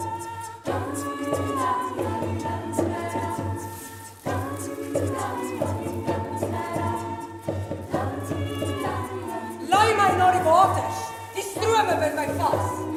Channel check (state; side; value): identical; both; correlation 1.00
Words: Laai my na die waters, die strome bind my vas.